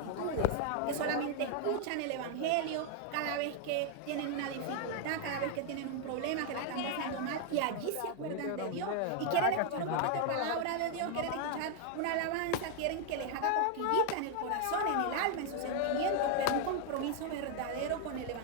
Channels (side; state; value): both; different; correlation 0.00